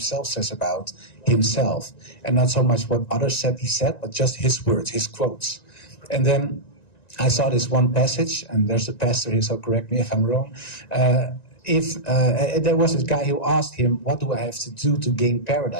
says about himself. And not so much what others said he said, but just his words, his quotes. And then I saw this one passage, and there's a pastor here, so correct me if I'm wrong. There was this guy who asked him, what do I have to do to gain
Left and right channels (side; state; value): right; late; 1.9 ms